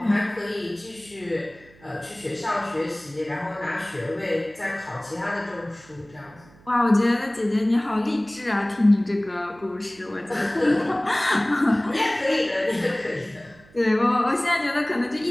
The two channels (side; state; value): right; noise; hum, 26 dB below the sound